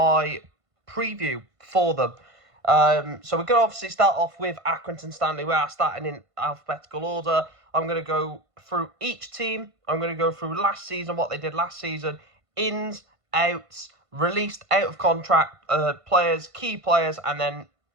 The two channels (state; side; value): late; left; 1.5 ms